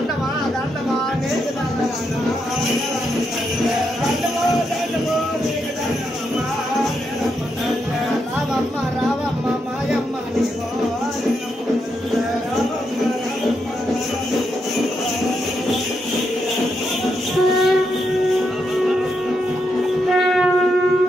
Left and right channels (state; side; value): normal; both; correlation 0.81